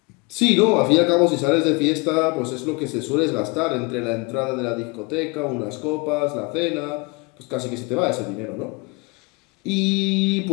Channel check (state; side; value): quieter; right; 27.7 dB